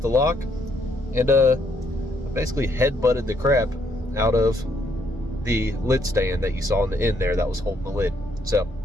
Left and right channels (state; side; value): normal; both; correlation 0.71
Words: lock, and I basically head-butted the crap out of the lid stand that you saw in the end there that was holding the lid. So